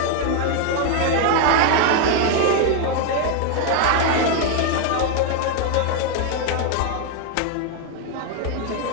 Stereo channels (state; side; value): different; both; correlation 0.01